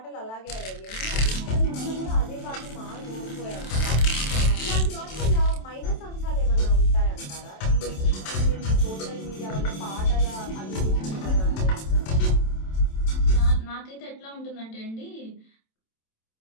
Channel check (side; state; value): right; late; 27 ms